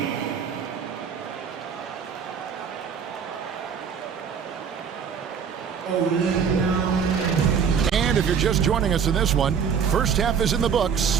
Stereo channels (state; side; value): quieter; left; 6.8 dB